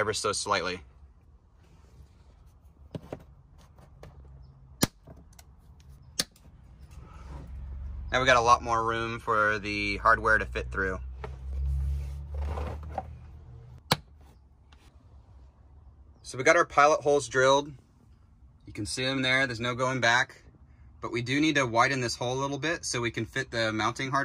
so slightly. Now we got a lot more room for the hardware to fit through. So we got our pilot holes drilled. You can see them there, there's no going back. But we do need to widen this hole a little bit so we can fit the mounting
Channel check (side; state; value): both; identical; correlation 1.00